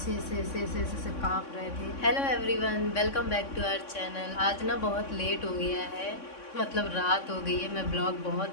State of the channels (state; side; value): late; right; 3.6 ms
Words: ऐसे ऐसे ऐसे ऐसे ऐसे कांप रहे थे। Hello everyone, welcome back to our channel. आज ना बहुत लेट हो गया है, मतलब रात हो गई है। मैं ब्लॉग बहुत